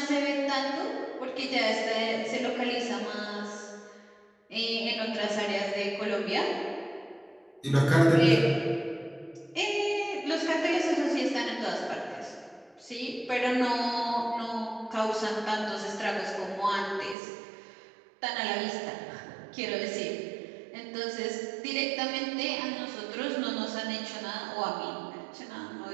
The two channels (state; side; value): drops out; left; at 17.2 s